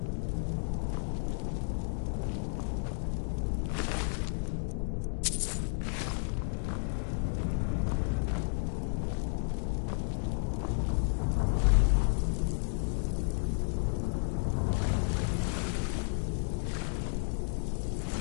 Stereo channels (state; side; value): silent; right; digital silence